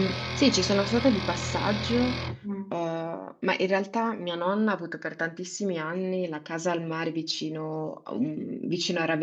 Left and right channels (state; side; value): identical; both; correlation 1.00